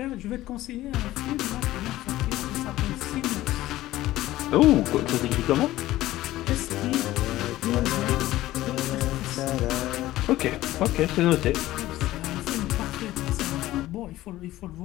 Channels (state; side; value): quieter; right; 15.8 dB